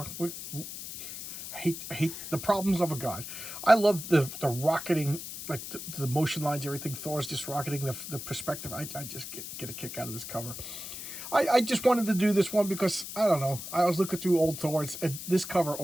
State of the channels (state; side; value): noise; left; hiss, 9 dB below the sound